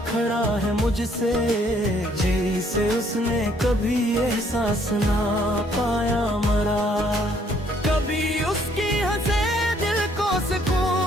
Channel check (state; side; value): normal; both; correlation 0.65